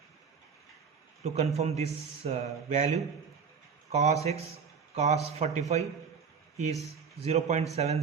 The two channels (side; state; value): left; quieter; 6.1 dB